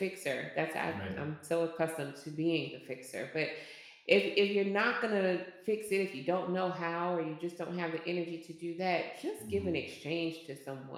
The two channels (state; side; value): identical; both; correlation 1.00